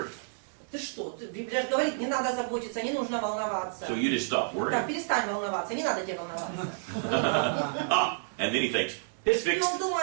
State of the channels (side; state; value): left; silent; digital silence